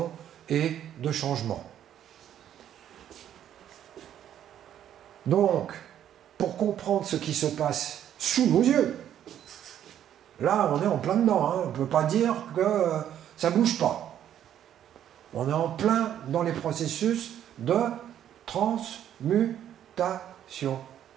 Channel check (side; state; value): left; quieter; 10.5 dB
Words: et de changement. Donc, pour comprendre ce qui se passe sous nos yeux, là, on est en plein dedans, hein. On ne peut pas dire que ça ne bouge pas. On est en plein dans les processus de transmutation.